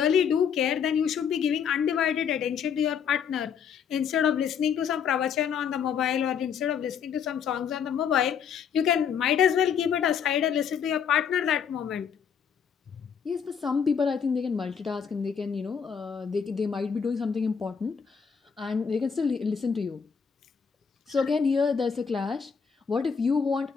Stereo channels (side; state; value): right; quieter; 7.1 dB